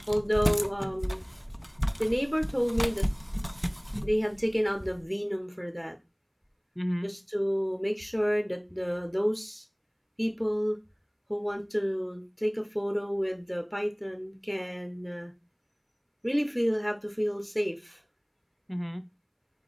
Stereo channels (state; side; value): identical; both; correlation 1.00